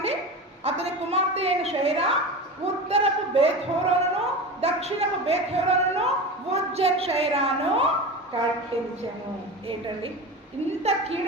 అతని కుమార్తె అయిన షైరా ఉత్తరపు బేత్‌హోరోనును దక్షిణపు బేత్‌హోరోనును ఉజ్జన్ షైరాను కట్టించెను. ఏంటండి, ఇంత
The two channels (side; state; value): both; normal; correlation 0.28